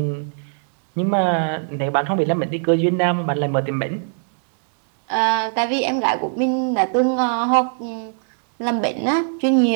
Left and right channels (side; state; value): left; silent; 65 dB below the other